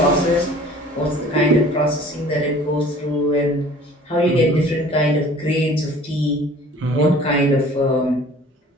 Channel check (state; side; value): normal; both; correlation 0.48